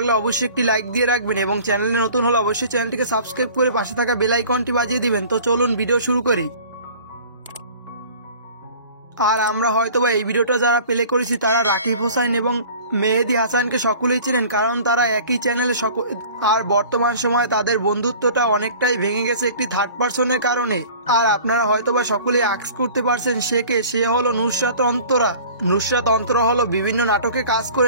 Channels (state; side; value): inverted; both; correlation -0.45